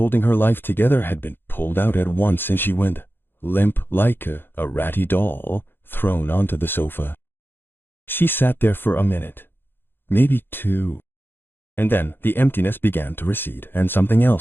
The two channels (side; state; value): right; late; 0.10 ms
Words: her life together had been pulled out at once, and she went limp like a ratty doll thrown onto the sofa. She sat there for a minute, maybe 2. And then the emptiness began to recede, and something